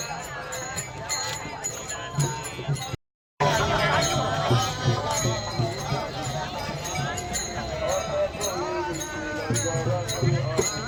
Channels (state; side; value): identical; both; correlation 1.00